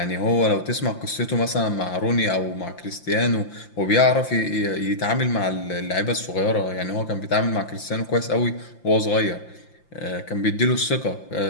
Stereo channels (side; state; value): right; late; 5.8 ms